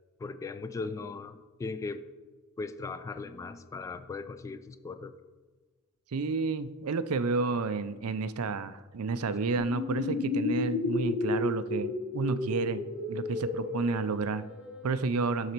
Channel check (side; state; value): both; normal; correlation 0.28